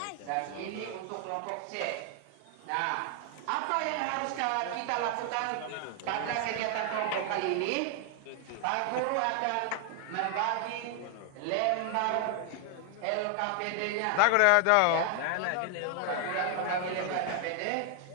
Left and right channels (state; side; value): different; both; correlation 0.00